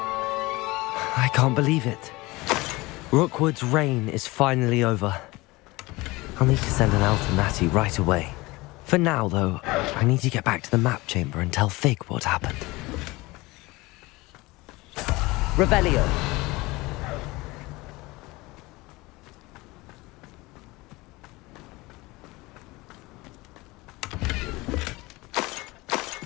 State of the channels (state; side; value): quieter; right; 21.9 dB